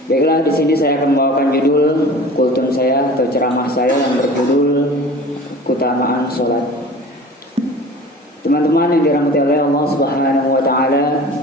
Baiklah, di sini saya akan membawakan judul kultum saya atau ceramah saya yang berjudul keutamaan sholat. Teman-teman yang dirahmati oleh Allah Subhanahu wa taala,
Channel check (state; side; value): normal; both; correlation 0.41